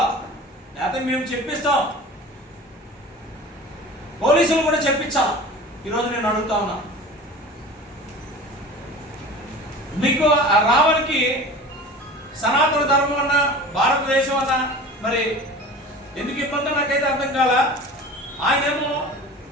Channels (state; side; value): normal; both; correlation 0.38